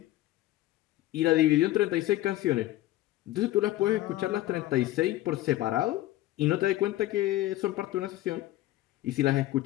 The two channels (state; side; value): quieter; right; 15.8 dB